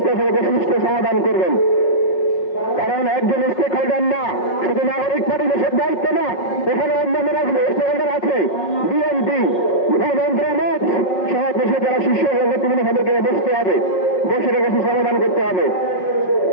সুষ্ঠু সমাধান করবেন। কারণ একজন স্টেক হোল্ডার না, শুধু নাগরিক পার্টি দেশের দায়িত্ব না, এখানে অন্যান্য স্টেক হোল্ডার আছে, বিএনপি, মন্ত্রণালয় সহ দেশে যারা শীর্ষ নেতৃবৃন্দ তাদেরকে বসতে হবে, বসে রেখে সমাধান করতে হবে।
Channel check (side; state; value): right; late; 5.5 ms